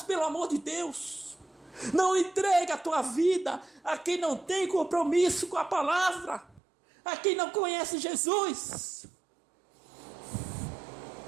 pelo amor de Deus. Não entregue a tua vida a quem não tem compromisso com a palavra, a quem não conhece Jesus.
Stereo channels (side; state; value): left; drops out; at 6.6 s